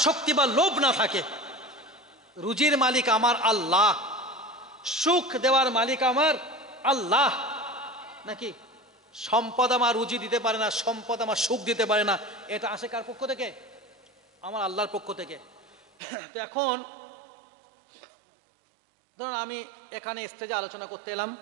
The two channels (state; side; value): drops out; left; at 15.9 s